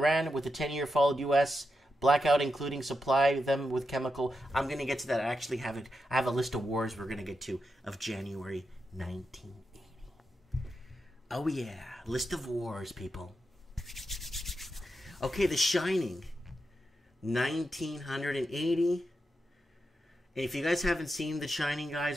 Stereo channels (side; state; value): both; normal; correlation 0.87